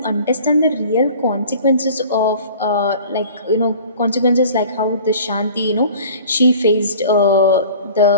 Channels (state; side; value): inverted; both; correlation -0.46